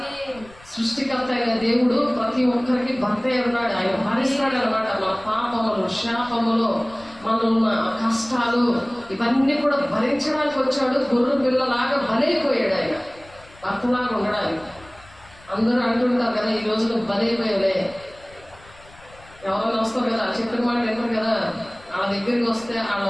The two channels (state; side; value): noise; left; rumble, 24 dB below the sound